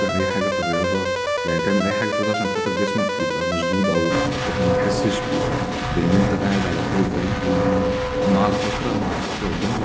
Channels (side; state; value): both; identical; correlation 1.00